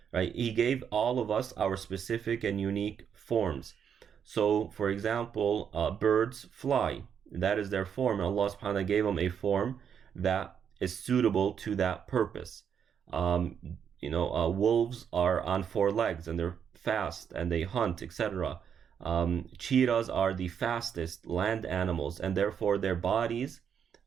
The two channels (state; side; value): quieter; left; 7.8 dB